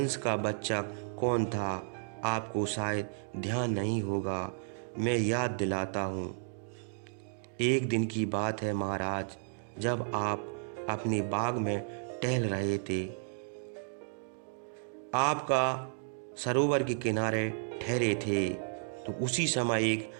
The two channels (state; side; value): silent; left; digital silence